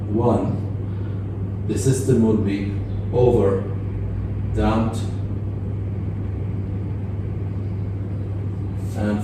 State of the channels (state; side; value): identical; both; correlation 1.00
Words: 1, the system will be over damped, and